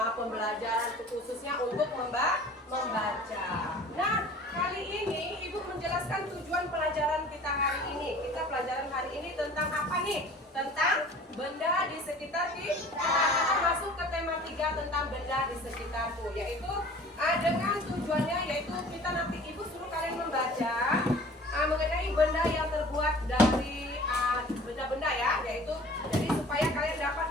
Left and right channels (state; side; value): normal; both; correlation 0.46